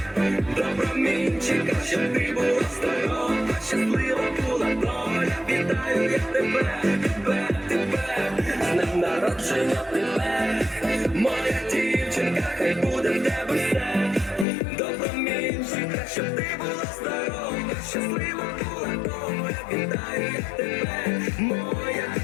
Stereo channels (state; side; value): drops out; right; at 14.5 s